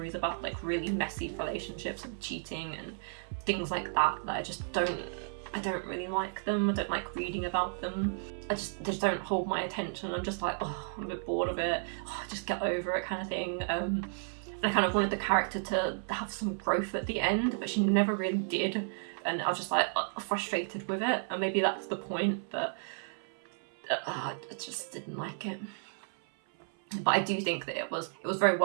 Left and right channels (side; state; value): left; silent; 56 dB below the other